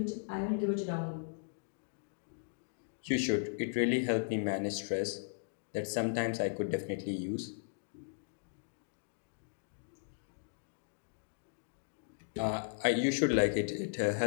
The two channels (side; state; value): right; silent; digital silence